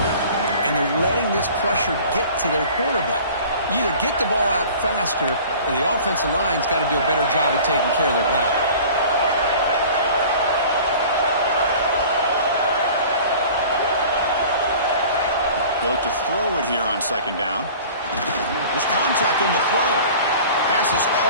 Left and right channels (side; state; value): both; inverted; correlation -0.44